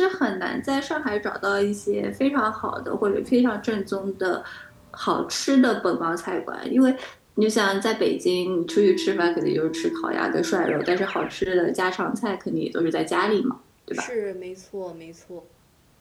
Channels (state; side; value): identical; both; correlation 1.00